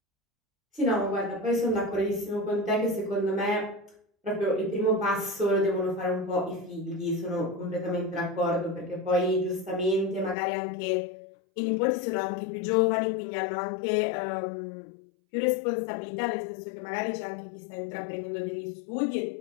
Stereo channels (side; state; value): right; drops out; at 10.4 s